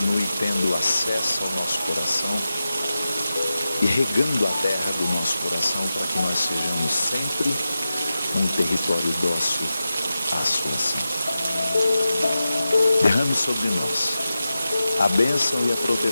tendo acesso ao nosso coração e regando a terra do nosso coração para que nós sejamos sempre um território dócil à sua ação. Derrame sobre nós a bênção e a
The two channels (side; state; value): both; inverted; correlation -0.92